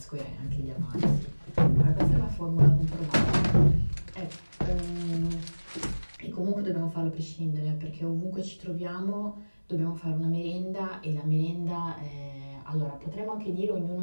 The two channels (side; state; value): both; inverted; correlation -1.00